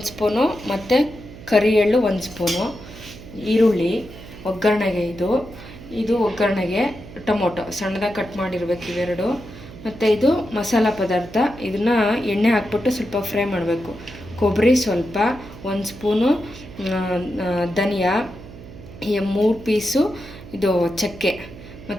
ಸ್ಪೂನು ಮತ್ತು ಕರಿ ಎಳ್ಳು 1 ಸ್ಪೂನು, ಈರುಳ್ಳಿ ಒಗ್ಗರಣೆಗೆ, ಇದು ಒಗ್ಗರಣೆಗೆ, ಟೊಮೊಟೊ ಸಣ್ಣದಾಗಿ ಕಟ್ ಮಾಡಿರ್ಬೇಕು ಇವೆರಡು, ಮತ್ತು ಇದು ಮಸಾಲ ಪದಾರ್ಥ. ಇದನ್ನು ಎಣ್ಣೆ ಹಾಕ್ಬಿಟ್ಟು ಸ್ವಲ್ಪ ಫ್ರೈ ಮಾಡಬೇಕು. ಕೊಬ್ಬರಿ ಸ್ವಲ್ಪ, 1 ಸ್ಪೂನು ಧನಿಯಾ, 3 ಪೀಸು ಇದು ಚಕ್ಕೆ,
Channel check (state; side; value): noise; right; hum, 16 dB below the sound